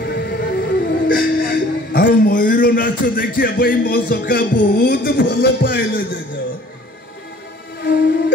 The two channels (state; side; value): normal; both; correlation 0.52